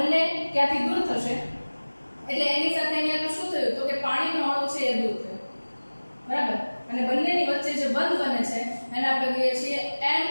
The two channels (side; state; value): both; inverted; correlation -1.00